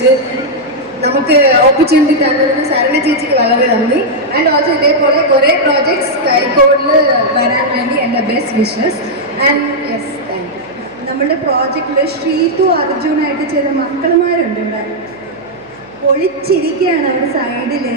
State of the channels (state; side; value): noise; right; hum, 30 dB below the sound